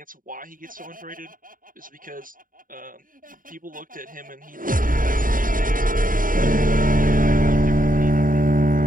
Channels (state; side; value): late; left; 0.40 ms